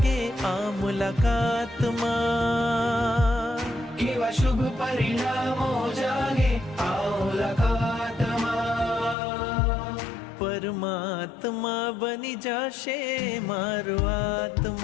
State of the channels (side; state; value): right; drops out; at 9.2 s